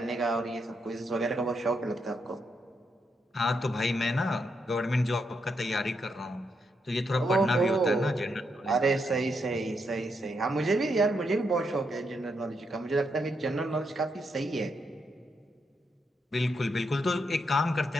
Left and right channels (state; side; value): normal; both; correlation 0.80